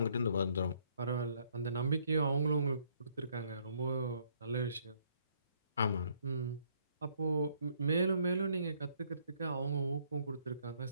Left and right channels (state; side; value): inverted; both; correlation -0.67